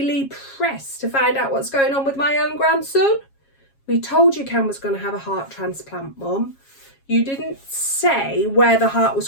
Press to find out what's going on with my own grandson?" "We told you Cam was going to have a heart transplant, Mum. You didn't say where the heart was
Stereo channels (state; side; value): late; right; 7.3 ms